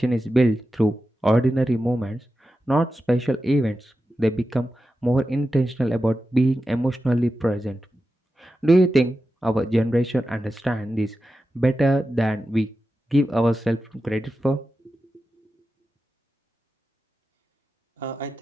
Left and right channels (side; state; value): both; normal; correlation 0.91